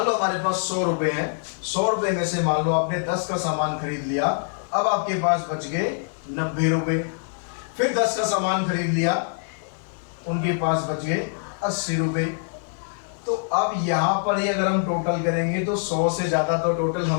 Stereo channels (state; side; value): silent; right; 55 dB below the other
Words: लो हमारे पास 100 रुपए हैं। 100 रुपए में से मान लो आपने 10 का सामान खरीद लिया। अब आपके पास बच गए 90 रुपए। फिर 10 का सामान खरीद लिया, उनके पास बच गए 80 रुपए। तो अब यहाँ पर ही अगर हम टोटल करेंगे तो 100 से ज्यादा तो टोटल